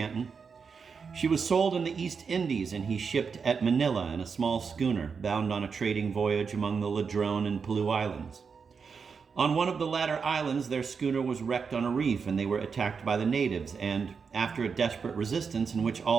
She was sold in the East Indies, and he shipped at Manila in a small schooner, bound on a trading voyage among the Ladrone and Pelew Islands. On one of the latter islands, their schooner was wrecked on a reef, and they were attacked by the natives, and after a desperate resistance in which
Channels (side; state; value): left; quieter; 5.7 dB